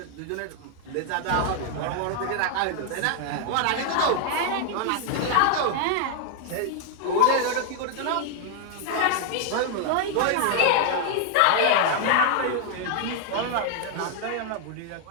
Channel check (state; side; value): different; both; correlation 0.00